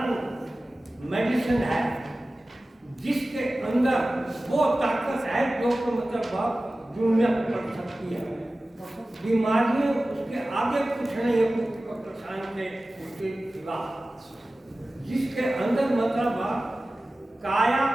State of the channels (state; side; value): normal; both; correlation 0.96